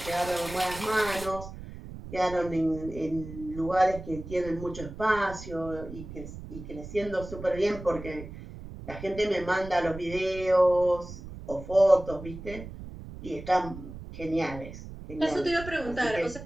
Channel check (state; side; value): noise; right; rumble, 12 dB below the sound